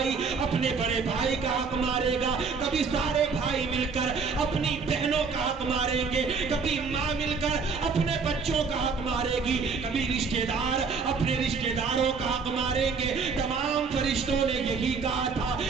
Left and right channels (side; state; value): left; quieter; 5.0 dB